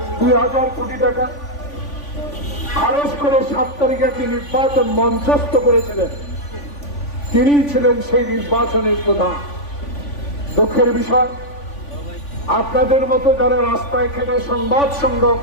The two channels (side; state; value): right; late; 3.5 ms